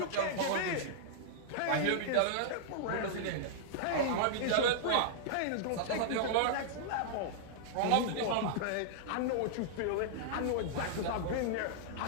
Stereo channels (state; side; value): different; both; correlation -0.01